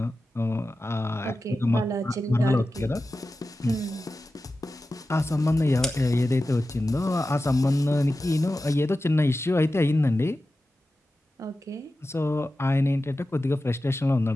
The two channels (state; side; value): normal; both; correlation 0.93